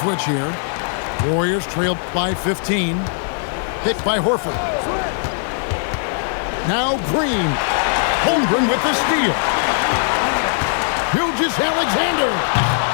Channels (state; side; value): silent; right; digital silence